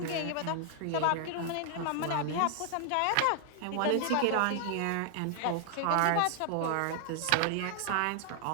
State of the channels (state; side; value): different; both; correlation 0.00